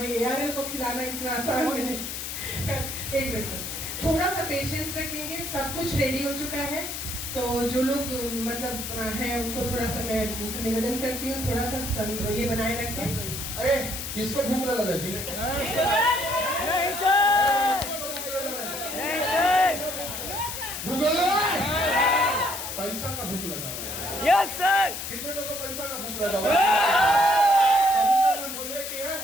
ARL को खिलाना इतना आसान नहीं। एक मिनट सर, थोड़ा सा पेशेंस रखेंगे, सब कुछ रेडी हो चुका है, तो जो लोग मतलब हैं उनको थोड़ा सा मैं उनसे निवेदन करती हूँ, थोड़ा सा ये बनाए रखें। अरे किसको भूख लगा जी? भूख लगा? पैसा का भूख लगा हुआ है। Yes sir. कितने लोगों को पैसा का भूख लगा हुआ है? बोले कि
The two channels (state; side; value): noise; left; hiss, 6 dB below the sound